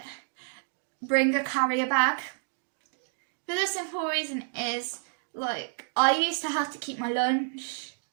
bring a carrier bag. For the simple reason is, like, I used to have to keep my lunch,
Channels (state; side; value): silent; left; 58 dB below the other